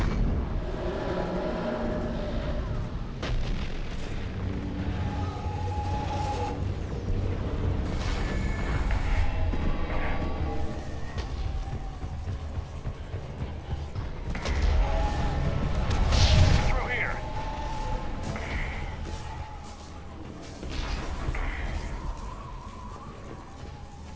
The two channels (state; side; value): identical; both; correlation 1.00